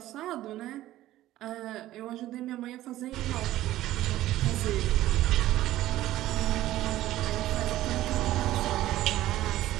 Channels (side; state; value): left; quieter; 14.8 dB